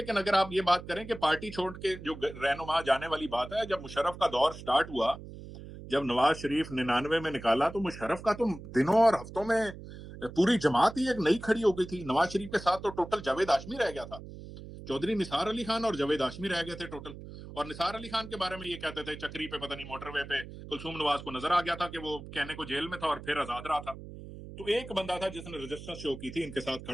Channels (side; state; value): right; noise; hum, 13 dB below the sound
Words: اگر آپ یہ بات کریں کہ پارٹی چھوڑ کے جو رہنما جانے والی بات ہے, جب مشرف کا دور سٹارٹ ہوا, جب نواز شریف 99 میں نکالا, تو مشرف کا تو دنوں اور ہفتوں میں پوری جماعت ہی ایک نئی کھڑی ہو گئی تھی. نواز شریف کے ساتھ تو ٹوٹل جاوید ہاشمی رہ گیا تھا, چودھری نثار علی خان اور جاوید ہاشمی رہ گئے تھے ٹوٹل. اور نثار علی خان کے بارے میں یہ کہتے تھے چکری پہ پتہ نہیں موٹر وے پہ کلثوم نواز کو نظر آ گیا تھا کہ وہ کہنے کو جیل میں تھا اور پھر آزاد رہا تھا. تو ایک بندہ تھا جس نے رجسٹر شو کی تھی, ان کے ساتھ